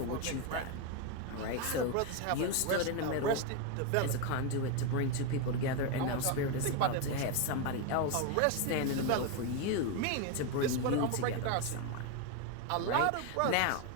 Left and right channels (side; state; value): both; different; correlation 0.02